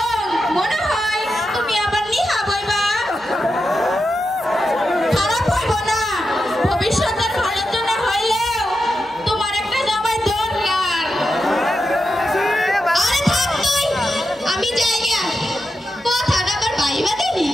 মনে হয় তুমি আবার নিহা বইবা। খারাপ হইব না, ভবিষ্যতের ভালোর জন্য হইলেও তোমার একটা জামাই দরকার। আরে থাক তুই, আমি যাই গিয়া। কথাটা আবার ভাইবা দিলি।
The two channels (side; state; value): both; normal; correlation 0.88